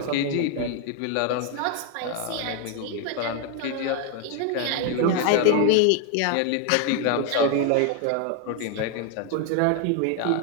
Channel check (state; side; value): different; both; correlation 0.01